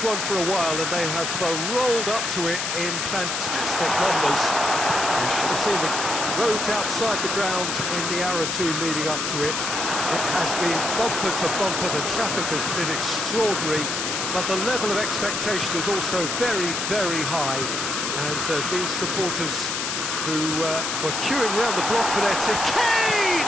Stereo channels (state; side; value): noise; left; hiss, 2 dB below the sound